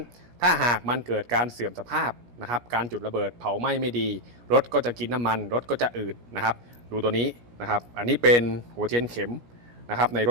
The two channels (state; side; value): late; left; 17 ms